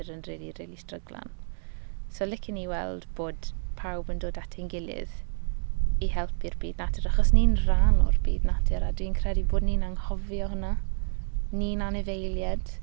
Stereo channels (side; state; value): left; silent; digital silence